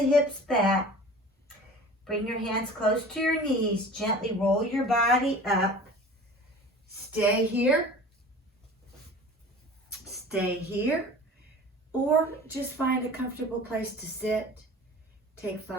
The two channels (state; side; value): normal; both; correlation 0.41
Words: back, bring your hands close to your knees, gently roll your body up. Stay here, or just find a comfortable place to sit. Take